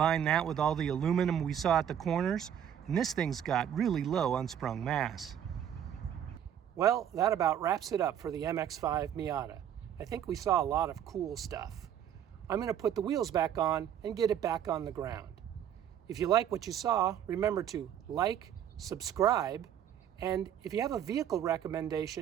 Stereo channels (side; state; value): left; quieter; 9.7 dB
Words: that with all the aluminum we saw at the corners, and this thing's got really low unsprung mass. Well, that about wraps it up for the MX-5 Miata. I think we saw a lot of cool stuff. I'm going to put the wheels back on and get it back on the ground. If you like what you saw, remember to like, subscribe, and if you have a vehicle